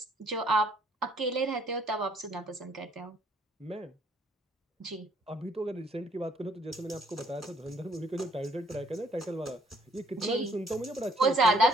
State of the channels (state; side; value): normal; both; correlation 0.64